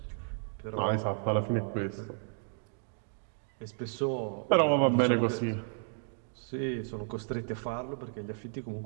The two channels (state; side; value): silent; left; 56 dB below the other